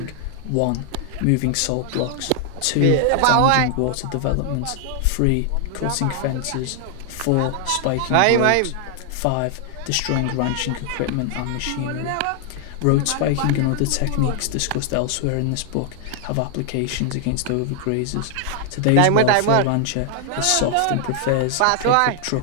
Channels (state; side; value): different; both; correlation 0.00